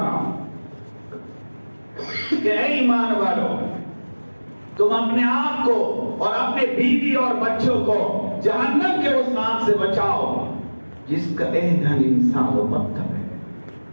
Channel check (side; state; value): both; inverted; correlation -1.00